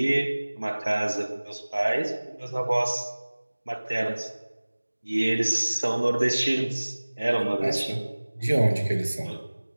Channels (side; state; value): both; inverted; correlation -1.00